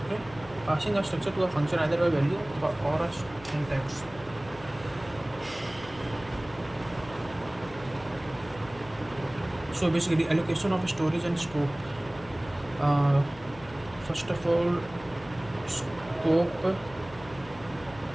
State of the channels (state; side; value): noise; left; hum, 19 dB below the sound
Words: Okay, passing a structure to a function either by value or a syntax. So basically allocation of storage and scope. First of all, scope